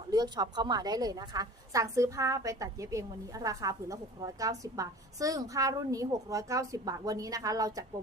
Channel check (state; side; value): normal; both; correlation 0.41